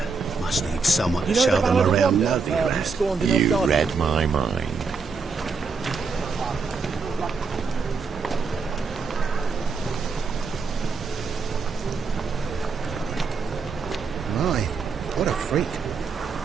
Must need someone to show them around Novigrad. You read my mind. My, what a freak.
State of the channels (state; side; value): quieter; left; 4.8 dB